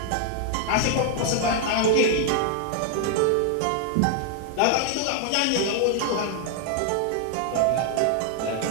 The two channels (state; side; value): different; both; correlation 0.00